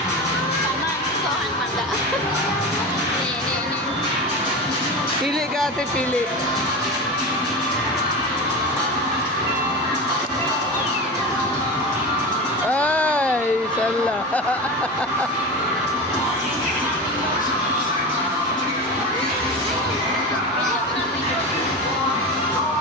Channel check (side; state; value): both; normal; correlation 0.25